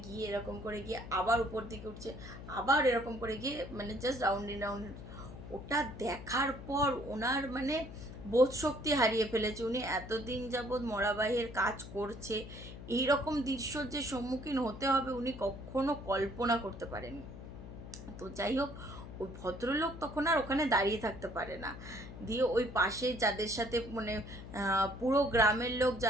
গিয়ে আবার উপর দিকে উঠছে, আবার এরকম করে গিয়ে মানে জাস্ট রাউন্ড। ওটা দেখার পর ওনার মানে বোধ শক্তি হারিয়ে ফেলেছে। উনি এতদিন যাবৎ মরাবাহীর কাজ করছে, এইরকম দৃশ্যর যে সম্মুখীন হতে হবে উনি কখনো কল্পনা করতে পারেনি। তো যাই হোক, ওই ভদ্রলোক তখন আর ওখানে দাঁড়িয়ে থাকতে পারে না, দিয়ে ওই পাশে যাদের সাথে মানে পুরো গ্রামের লোক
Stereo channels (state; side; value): noise; left; hum, 12 dB below the sound